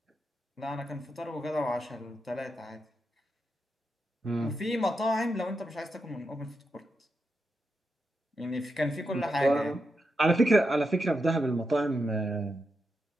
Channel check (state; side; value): normal; both; correlation 0.86